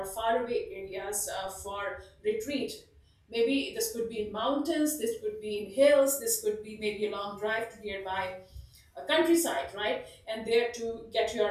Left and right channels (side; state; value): both; identical; correlation 1.00